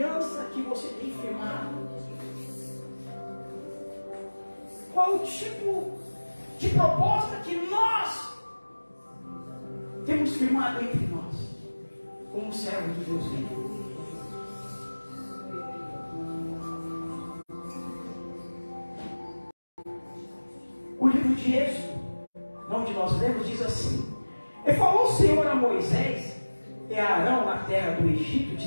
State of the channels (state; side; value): inverted; both; correlation -1.00